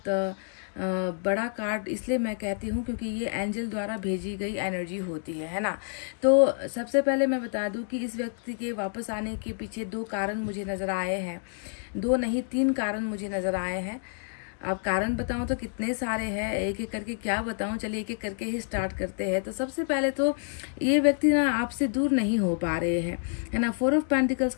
बड़ा कार्ड इसलिए मैं कहती हूँ क्योंकि ये एंजल द्वारा भेजी गई एनर्जी होती है ना। तो सबसे पहले मैं बता दूँ कि इस व्यक्ति के वापस आने के पीछे 2 कारण मुझे नज़र आए हैं, 2 नहीं 3 कारण मुझे नज़र आए हैं। अब कारण बताऊं तो कितने सारे हैं, एक एक करके क्या बताऊं, चलिए एक एक करके ही स्टार्ट करते हैं। तो सबसे पहले तो ये व्यक्ति ना आपसे दूर नहीं हो पा रहे हैं, है ना। 4 ऑफ पेंटिकल्स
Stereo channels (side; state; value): right; silent; 59 dB below the other